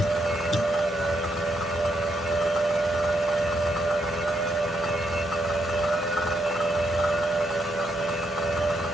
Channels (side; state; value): both; normal; correlation 0.77